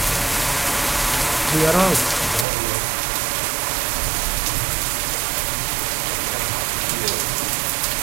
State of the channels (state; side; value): drops out; left; at 2.5 s